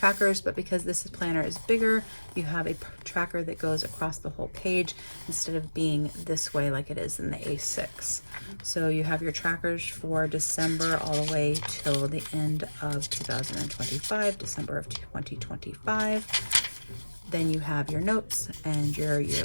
but because this planner is bigger, you have a tracker that goes across the whole page instead of being this way like it is in the A6. So you have your trackers for December all the way till the end of 2025, December of 2025. Then you have your notes and your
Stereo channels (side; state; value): both; inverted; correlation -1.00